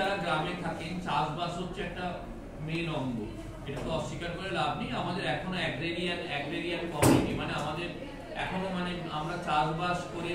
গ্রামে থাকেন চাষবাস হচ্ছে একটা মেন অঙ্গ, এটা তো অস্বীকার করে লাভ নেই। আমাদের এখনো অ্যাগ্রেরিয়ান কমিউনিটি, মানে আমাদের এখনো মানে আমরা চাষবাস করে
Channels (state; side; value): identical; both; correlation 1.00